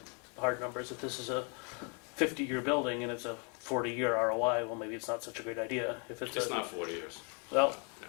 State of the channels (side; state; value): right; quieter; 36.7 dB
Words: numbers. If this is a 50-year building and it's a 40-year ROI, well, maybe it's not such a great idea. If it's Not 40 years. well,